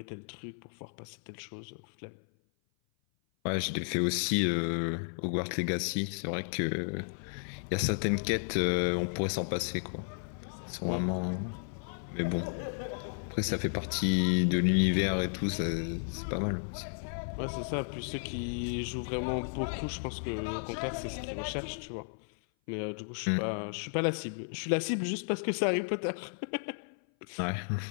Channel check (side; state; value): right; silent; 56 dB below the other